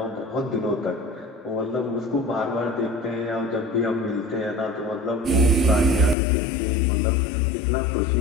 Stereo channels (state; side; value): drops out; right; at 6.2 s